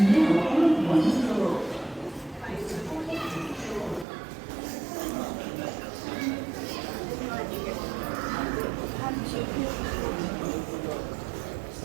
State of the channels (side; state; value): left; drops out; at 4.0 s